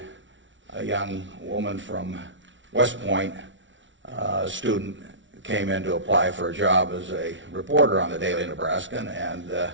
a young woman from West Point, a student, came in to apply for a job as a reporter on the Daily Nebraskan,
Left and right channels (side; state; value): left; late; 0.55 ms